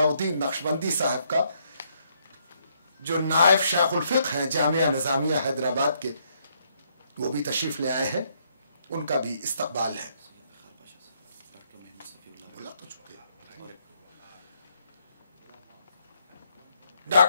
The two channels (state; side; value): inverted; both; correlation -0.73